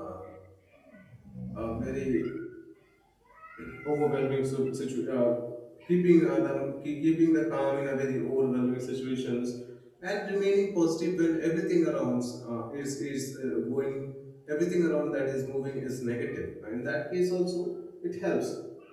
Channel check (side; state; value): both; identical; correlation 1.00